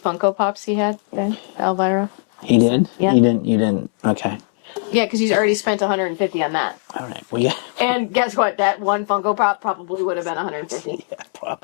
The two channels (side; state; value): right; silent; 66 dB below the other